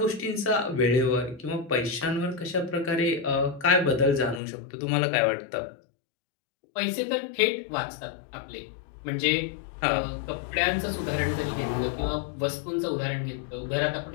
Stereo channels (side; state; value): right; drops out; at 4.4 s